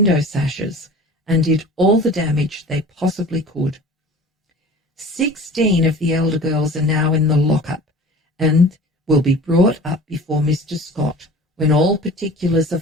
sashes and did all the damage they possibly could. 16 of the elder girls are now in the lockup and will be brought up before Mr. Scott, when all particulars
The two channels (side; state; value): both; normal; correlation 0.41